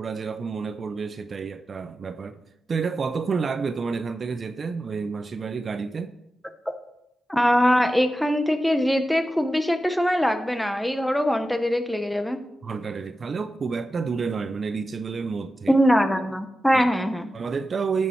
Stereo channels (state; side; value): normal; both; correlation 0.92